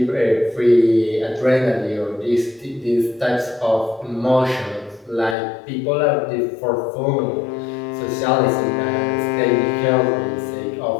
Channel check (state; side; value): drops out; right; at 5.4 s